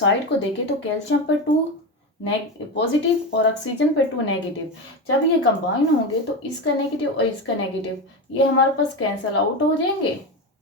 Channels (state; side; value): normal; both; correlation 0.18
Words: को देखें तो कैल्शियम पर 2 पॉजिटिव और ऑक्सीजन पे 2 नेगेटिव, जब ये कंबाइन होंगे तो इसका नेगेटिव और इसका नेगेटिव ये हमारे पास कैंसिल आउट हो जाएंगे,